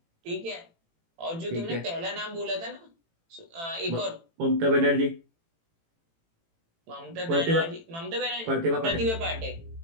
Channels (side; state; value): left; late; 18 ms